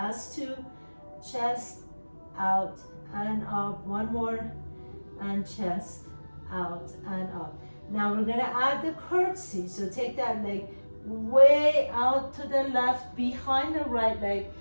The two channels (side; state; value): both; inverted; correlation -1.00